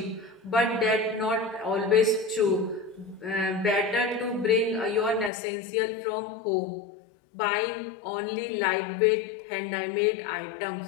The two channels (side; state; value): right; drops out; at 5.3 s